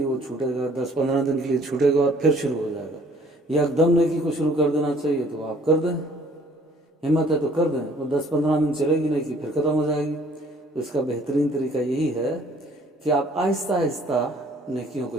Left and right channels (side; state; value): both; normal; correlation 0.57